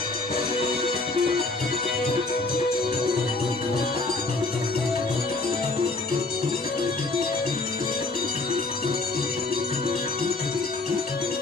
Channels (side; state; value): right; quieter; 3.3 dB